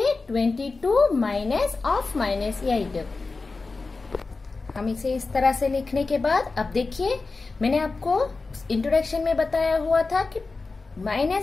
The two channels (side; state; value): right; quieter; 3.9 dB